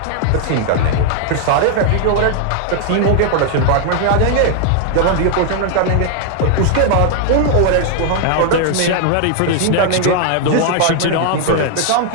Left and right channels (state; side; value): different; both; correlation 0.00